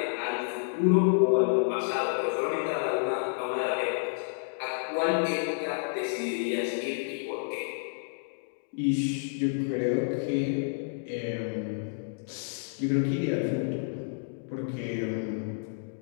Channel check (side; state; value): right; silent; digital silence